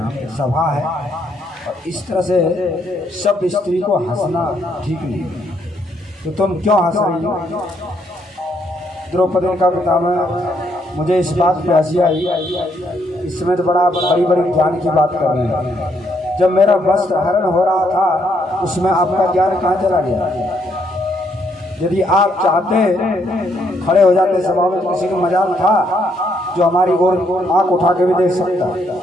पे सभा है और इस तरह से सब स्त्री को हंसना ठीक नहीं, तो तुम क्यों हंस रही हो? द्रौपदी का पितामह मुझे इस बात पे हंसी आई, इस समय तो बड़ी बड़ी ज्ञान की बात कर रहे हैं। जब मेरा वस्त्र हरण हो रहा था उसमें आपका ज्ञान कहाँ चला गया? यदि आप चाहते खड़े हो जाते सभा में, किसी को मजाल था जो हमारी ओर आंख उठा के भी देख सकता,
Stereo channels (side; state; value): both; normal; correlation 0.73